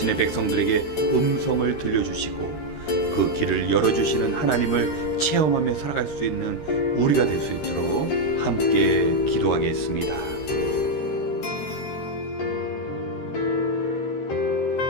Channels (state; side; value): late; right; 13 ms